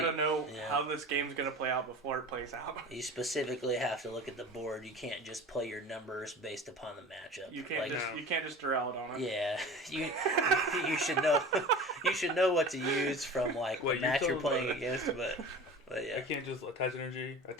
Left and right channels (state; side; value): normal; both; correlation 0.37